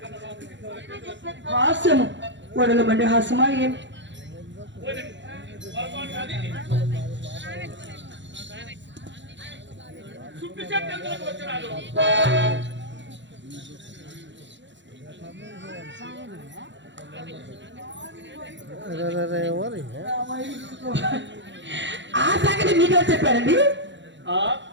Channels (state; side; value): late; left; 0.53 ms